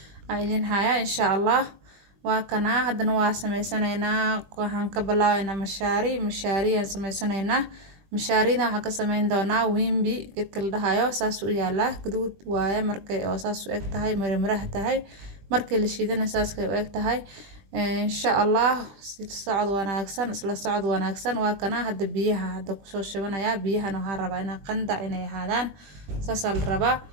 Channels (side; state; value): left; late; 20 ms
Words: عايزين هايا إن شاء الله وكنا هدنا واسميسانينا وحان كبلاوينا مشاري سميسانينا mashaarida waxaa ka sameyn doonaa wimbi gedka la dhahayo saas u yaala guduud waaye markay oo saas u eg tahay marmaraha tahay markii la shiidana saas kay u eg tahay insha Allah isla socod wanaagsan waa kana hadda biyaha hadda ku soo shibanaya biyahan waxaan rabaa inaan qandac inay ahaadaan saas la rabaa